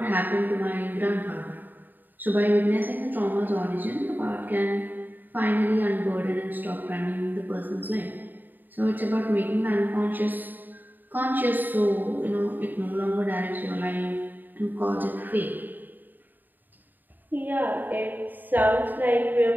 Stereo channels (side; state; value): left; late; 0.089 ms